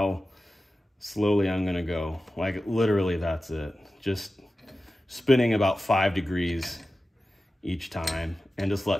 slowly I'm gonna go. Like literally that's it. Just spinning about 5 degrees each time and just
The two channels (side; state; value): both; normal; correlation 0.94